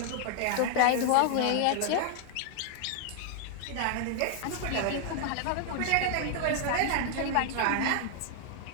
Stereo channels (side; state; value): both; different; correlation 0.00